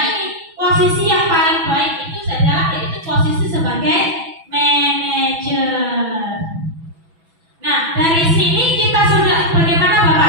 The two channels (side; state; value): left; late; 6.0 ms